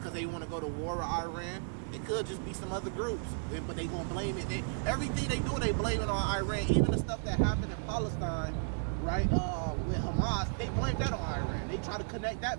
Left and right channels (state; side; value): silent; left; digital silence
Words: they want to go to war with Iran. It could just be some other groups, but they gonna blame it. Everything they do, they blame it on Iran. Even the stuff that happened in Palestine, right, with Hamas, they blame that on Iran. They try to connect